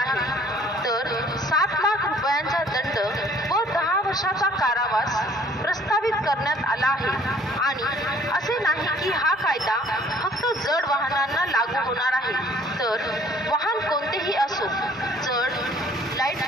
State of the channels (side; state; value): both; normal; correlation 0.57